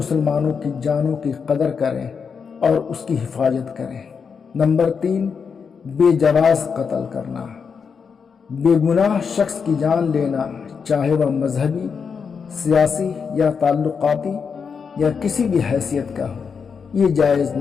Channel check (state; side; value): quieter; right; 6.0 dB